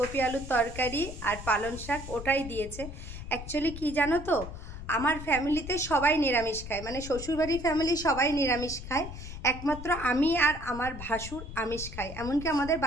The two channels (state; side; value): noise; left; rumble, 10 dB below the sound